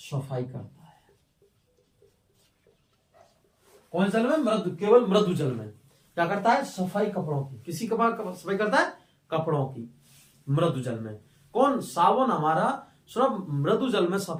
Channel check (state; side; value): identical; both; correlation 1.00